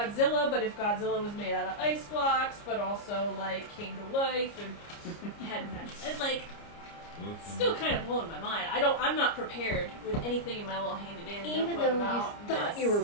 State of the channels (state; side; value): late; right; 29 ms